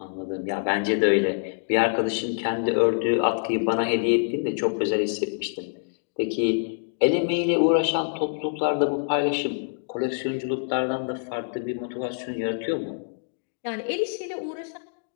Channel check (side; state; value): right; silent; digital silence